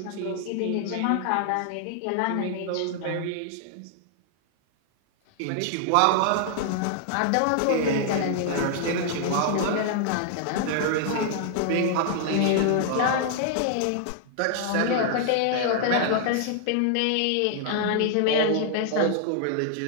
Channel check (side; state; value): both; different; correlation 0.00